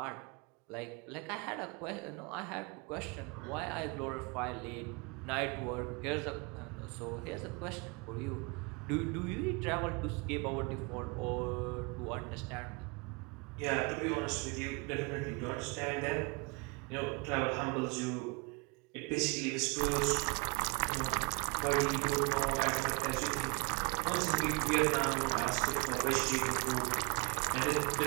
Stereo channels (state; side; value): quieter; left; 30.0 dB